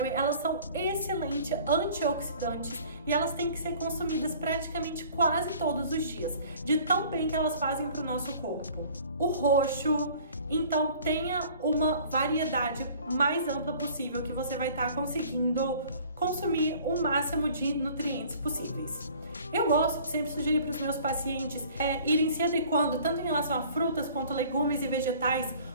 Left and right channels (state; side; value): inverted; both; correlation -0.50